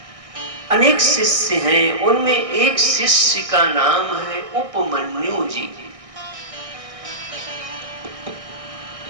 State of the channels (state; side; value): late; left; 1.6 ms